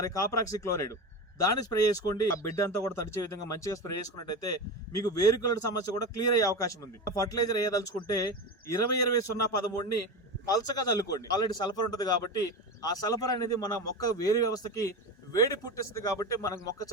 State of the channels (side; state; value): both; normal; correlation 0.23